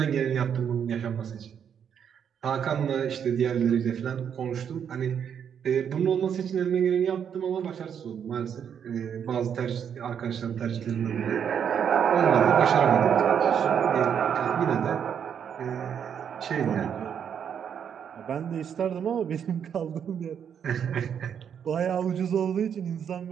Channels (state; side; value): quieter; left; 8.1 dB